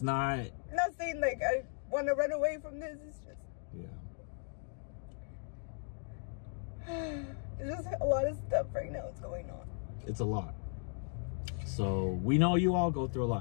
I'm not saying like I want to run away from this. It's just there's just a lot of stuff right now that's going on. It's a lot. So we know you all go through a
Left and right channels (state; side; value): silent; right; 53 dB below the other